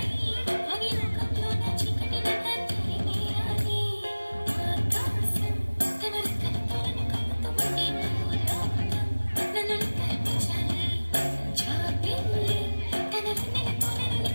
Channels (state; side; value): inverted; both; correlation -1.00